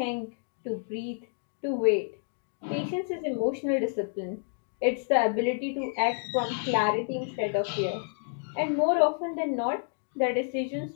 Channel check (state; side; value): silent; right; 58 dB below the other